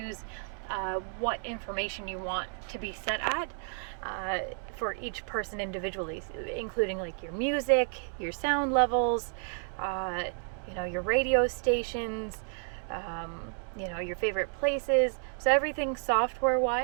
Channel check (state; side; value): silent; left; 57 dB below the other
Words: what information you want to be set at for each person individually, including like your music, your sound levels, you know, your radio stations, you know, your favorite places. So everything software